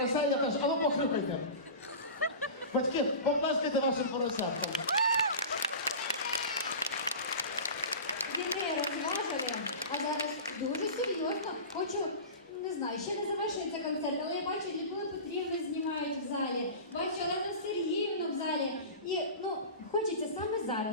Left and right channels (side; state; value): both; inverted; correlation -0.32